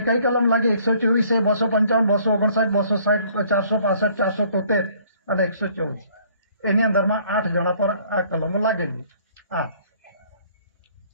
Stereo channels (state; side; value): inverted; both; correlation -0.59